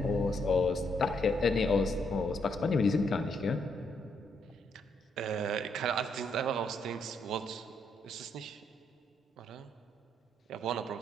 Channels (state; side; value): normal; both; correlation 0.75